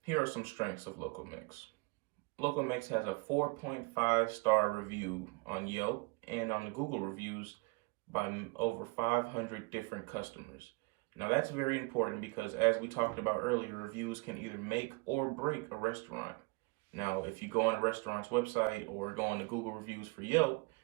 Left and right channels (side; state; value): left; quieter; 27.8 dB